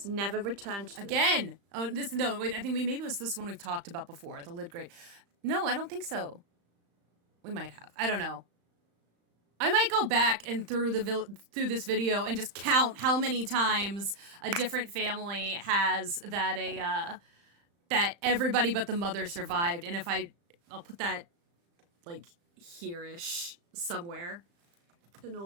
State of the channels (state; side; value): late; left; 35 ms